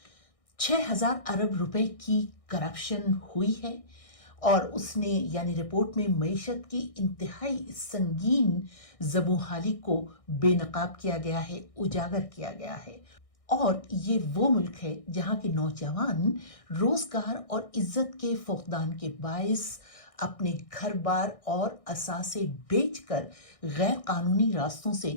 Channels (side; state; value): right; late; 1.6 ms